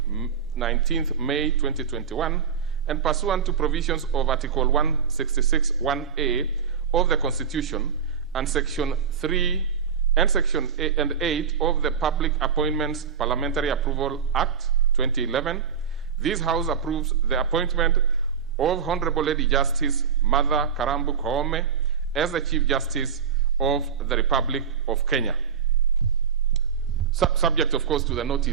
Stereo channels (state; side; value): quieter; left; 6.9 dB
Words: 19th May 2021, and pursuant to provisions of Article 166(1)(a) of the Constitution and Section 3 and Section 8 of the Public Appointments Parliamentary Approval Act 2011, this House approves the appointment of Honorable Lady Justice Martha Karambu Koome as the Chief Justice of the Republic of Kenya. Subject, of course, to the